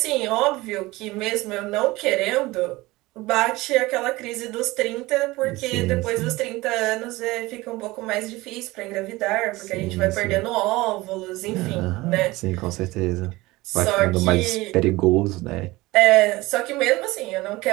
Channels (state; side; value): quieter; left; 20.3 dB